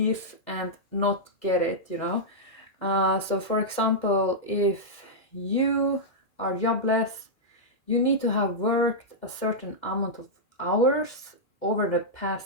and not get it, you know. So for example, if you are jobless, you need to have worked a certain amount of hours over the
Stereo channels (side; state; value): right; late; 2.2 ms